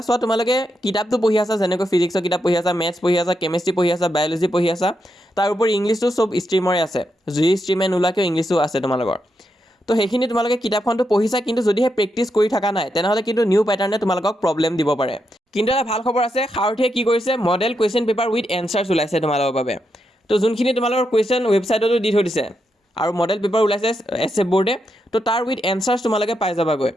চোৱা, তোমালোকে কিতাপটো পঢ়ি আছা, যেনেকৈ ফিজিক্সৰ কিতাপ পঢ়ি আছা, মেথছ পঢ়ি আছা, কেমেষ্ট্ৰি পঢ়ি আছা, বায়'লজি পঢ়ি আছা, তাৰ উপৰি ইংলিছটো চব ষ্ট্ৰীমৰে আছে, যি ষ্ট্ৰীমে নোলোৱাকৈ ইংলিছো আছে তোমালোকৰ। তো সেইখিনি তোমালোকে কিতাপখনটো পঢ়িছা, কিন্তু যদিহে প্ৰেক্টিছ কৰি থকা নাই, তেনেহ'লে কিন্তু নিউ পেটাৰ্ণে তোমালোকক প্ৰব্লেম দিব পাৰে। কিন্তু এটা ভাল খবৰ আছে, সাৰথিয়ে কি কৰিছে, model question paper with answers ওলাইছে তোমালোকৰ বাবে। তো যোনখিনি তোমালোকৰ কুৱেশ্যন ৱেবছাইটতো দি থৈ দিছে, আৰু মডেল পেপাৰ ওলাইছে SF বৰ্ডে, তো তাৰ উইথ এনচাৰ্ছ তোমালোকে পাই যাবাগৈ।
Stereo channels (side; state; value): both; normal; correlation 0.83